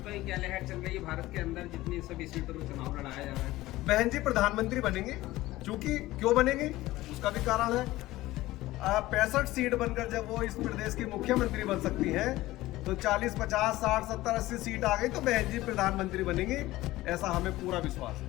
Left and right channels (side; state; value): right; quieter; 17.3 dB